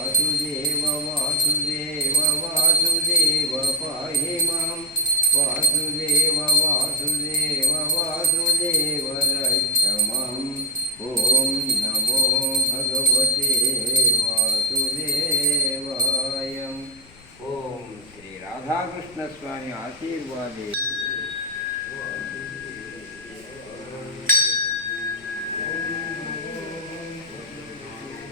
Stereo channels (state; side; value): noise; left; rumble, 25 dB below the sound